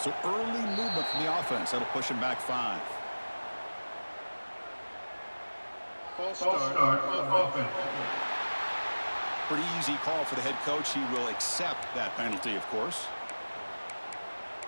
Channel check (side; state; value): both; inverted; correlation -1.00